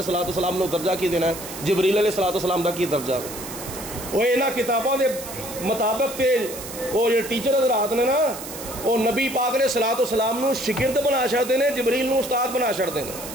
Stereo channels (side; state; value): right; noise; hiss, 11 dB below the sound